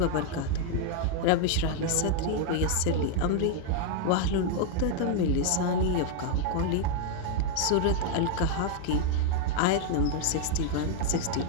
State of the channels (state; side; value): different; both; correlation 0.00